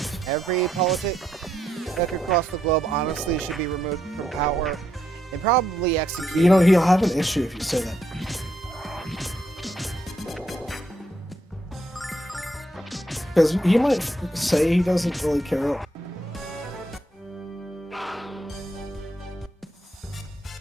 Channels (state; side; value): normal; both; correlation 0.77